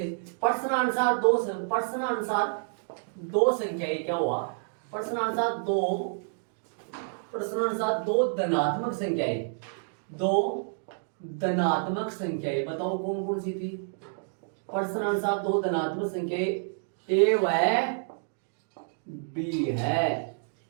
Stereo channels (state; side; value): silent; left; digital silence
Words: प्रश्नानुसार दो संख्याएं क्या हुआ, प्रश्नानुसार दो धनात्मक संख्याएं बताओ कौन कौन सी थी। प्रश्नानुसार दो धनात्मक संख्याएं a व b है,